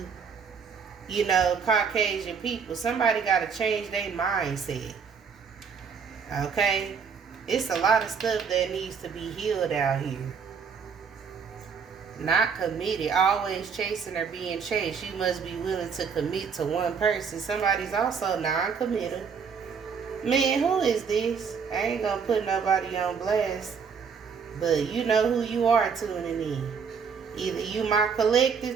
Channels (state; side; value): quieter; left; 6.2 dB